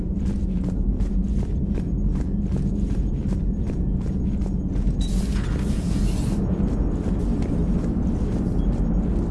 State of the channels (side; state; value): both; identical; correlation 1.00